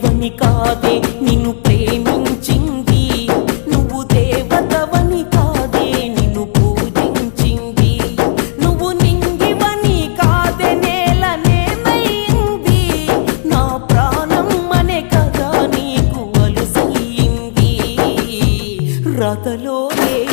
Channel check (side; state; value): right; silent; digital silence